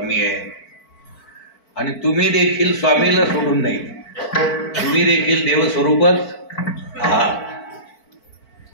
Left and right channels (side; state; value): right; late; 4.5 ms